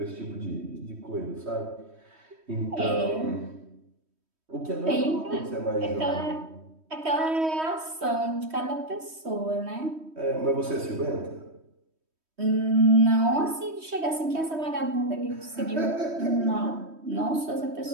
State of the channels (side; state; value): left; late; 3.1 ms